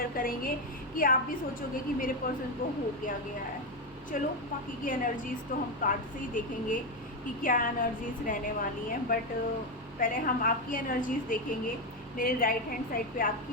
करेंगे कि आप भी सोचोगे कि मेरे पर्सन को हो क्या गया है। चलो बाकी की एनर्जीज़ तो हम कार्ड से ही देखेंगे कि क्या एनर्जीज़ रहने वाली हैं, बट पहले हम आपकी एनर्जीज़ देखेंगे। मेरे राइट हैंड साइड पे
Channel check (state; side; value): normal; both; correlation 0.09